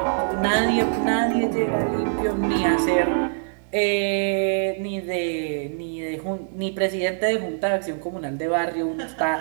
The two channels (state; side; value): silent; left; 63 dB below the other